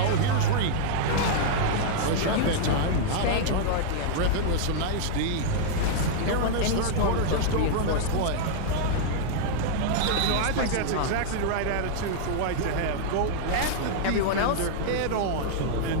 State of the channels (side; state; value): both; different; correlation -0.01